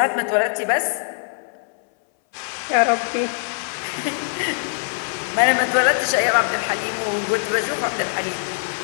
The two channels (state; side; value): silent; right; 60 dB below the other